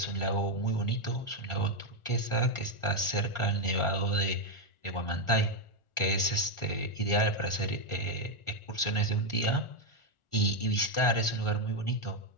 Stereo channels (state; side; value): late; right; 1.4 ms